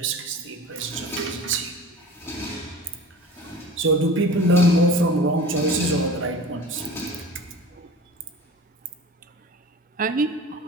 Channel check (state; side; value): normal; both; correlation 0.38